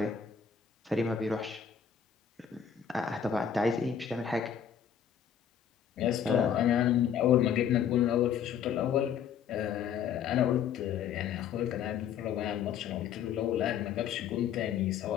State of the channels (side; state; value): right; quieter; 8.2 dB